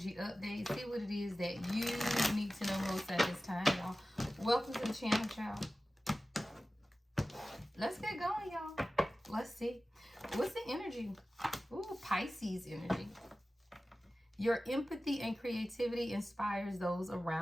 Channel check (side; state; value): both; normal; correlation 0.96